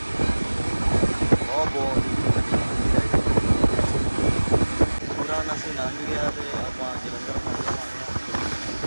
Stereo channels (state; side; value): inverted; both; correlation -1.00